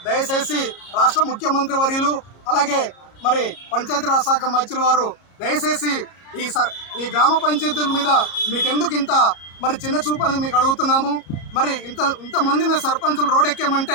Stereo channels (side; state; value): right; late; 33 ms